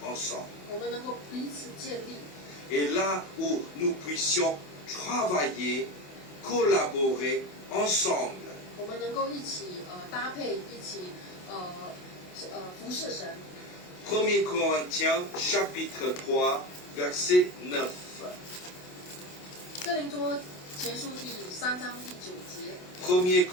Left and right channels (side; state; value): right; late; 28 ms